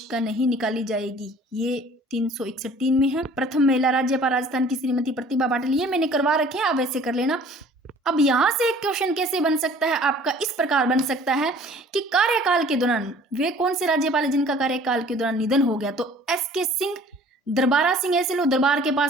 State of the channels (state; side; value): normal; both; correlation 0.51